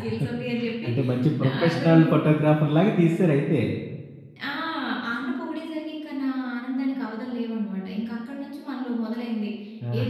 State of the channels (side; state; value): both; identical; correlation 1.00